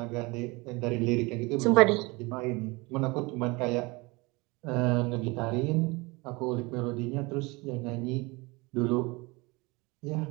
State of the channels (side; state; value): left; quieter; 25.2 dB